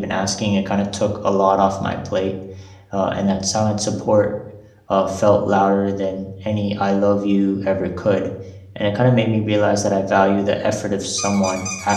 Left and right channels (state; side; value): identical; both; correlation 1.00